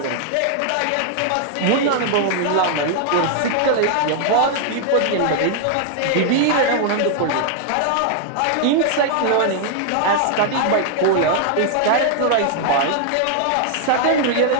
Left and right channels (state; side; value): different; both; correlation 0.00